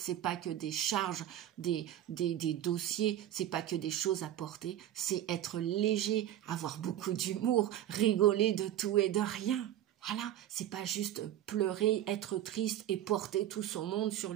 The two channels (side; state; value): left; quieter; 12.1 dB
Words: pas que des charges, des dossiers, c'est pas que des choses à porter, c'est être léger, avoir beaucoup d'humour, rigoler de tout et de rien. Voilà, c'est pas juste pleurer, être triste et porter tout son monde sur